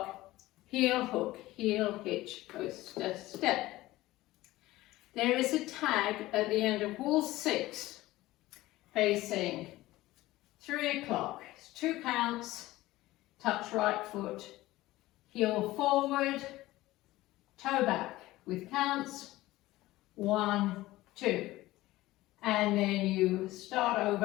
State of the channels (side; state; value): right; quieter; 17.5 dB